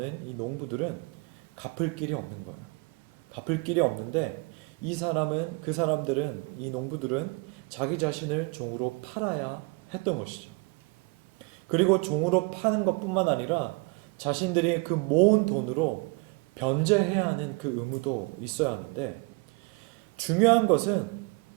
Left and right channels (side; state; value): left; quieter; 28.7 dB